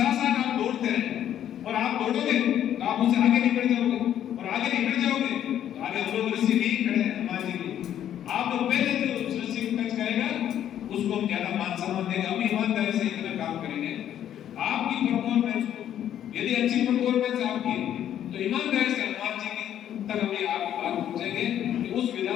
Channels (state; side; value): quieter; right; 10.6 dB